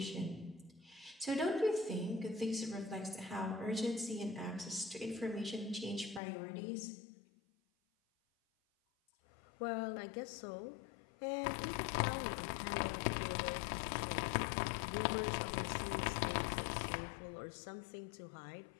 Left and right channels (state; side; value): drops out; right; at 6.2 s